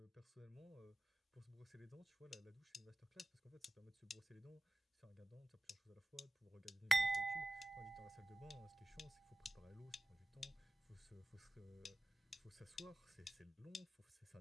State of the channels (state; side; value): normal; both; correlation 0.95